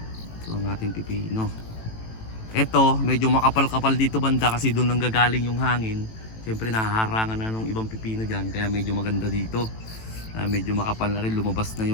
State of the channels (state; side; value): late; right; 18 ms